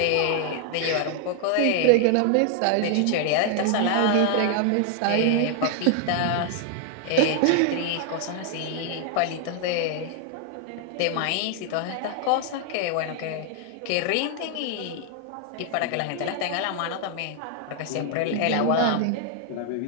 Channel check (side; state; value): both; different; correlation 0.00